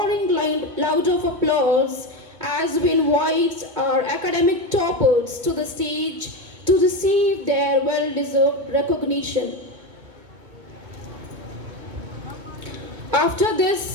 loud of applause as we invite our academic toppers to the stage to receive their well-deserved recognition. After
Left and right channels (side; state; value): left; late; 2.2 ms